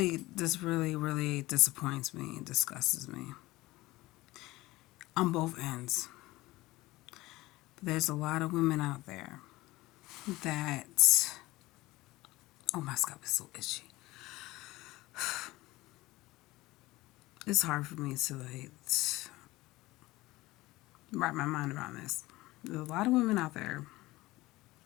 disappoints me and disgusts me on both ends. But there's a lot of women out there that, oh, my scalp is so itchy. It's hard for me to wrap my mind around this. There's a lot of women out there.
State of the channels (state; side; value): quieter; right; 19.2 dB